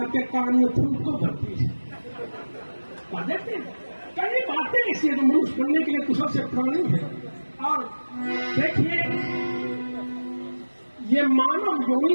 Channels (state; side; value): inverted; both; correlation -1.00